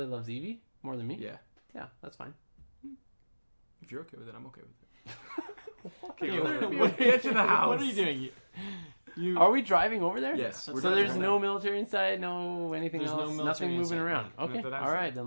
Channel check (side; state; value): both; inverted; correlation -1.00